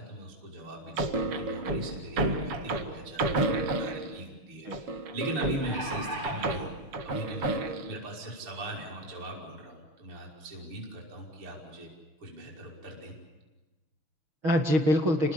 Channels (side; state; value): left; late; 7.1 ms